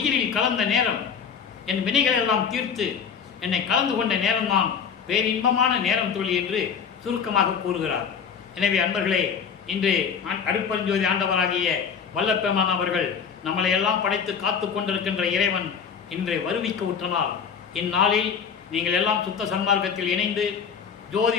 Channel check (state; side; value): quieter; right; 6.8 dB